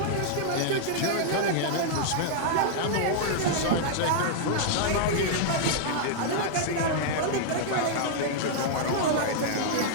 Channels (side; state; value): both; different; correlation -0.01